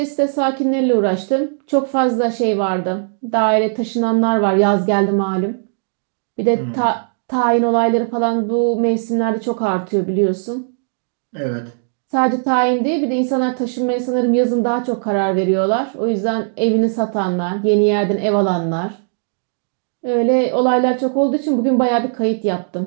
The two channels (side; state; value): left; silent; digital silence